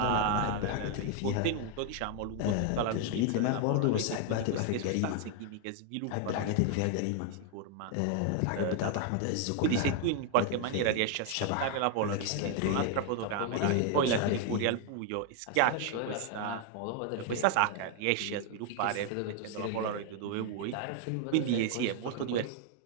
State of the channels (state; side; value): different; both; correlation 0.00